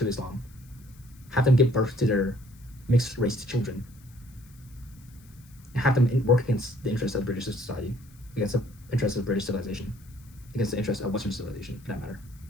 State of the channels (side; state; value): left; noise; hiss, 27 dB below the sound